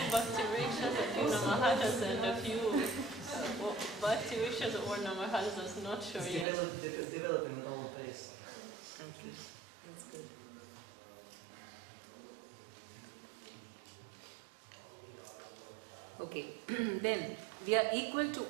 Bhakti Vrikshas, a few Namahatas, and a few Bhakti Vrikshas or Namahatas, I'm not sure yet. Developing at own pace. Okay, that's good. Okay, then we are equal to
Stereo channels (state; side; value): drops out; left; at 6.5 s